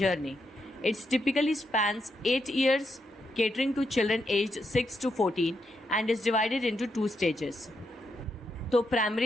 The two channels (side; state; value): both; normal; correlation 0.81